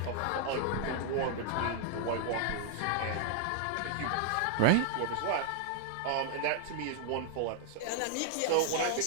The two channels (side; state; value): both; different; correlation -0.01